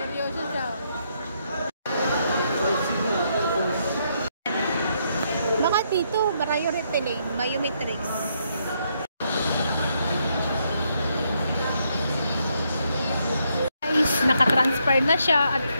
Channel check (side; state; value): both; inverted; correlation -0.76